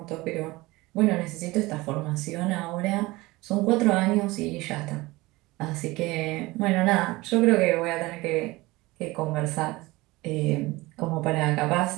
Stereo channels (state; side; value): quieter; left; 21.0 dB